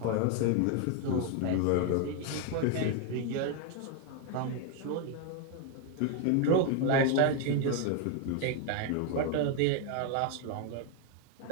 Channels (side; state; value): both; different; correlation 0.01